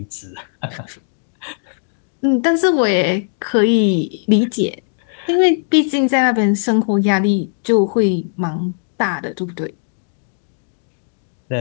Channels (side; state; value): right; silent; digital silence